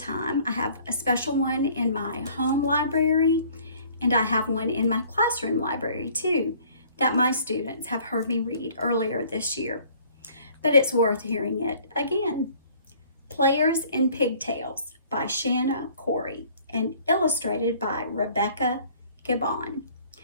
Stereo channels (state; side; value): inverted; both; correlation -0.55